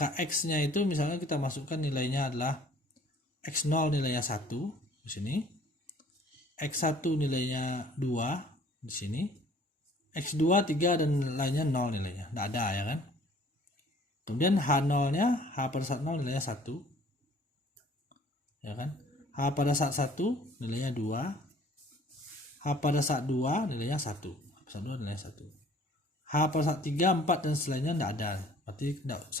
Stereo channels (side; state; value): both; normal; correlation 0.54